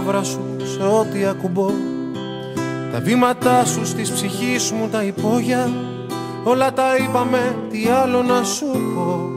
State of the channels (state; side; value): identical; both; correlation 1.00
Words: σου σε ό,τι ακουμπώ. Τα βήματά σου στις ψυχής μου τα υπόγεια. Όλα τα είπαμε, τι άλλο να σου πω.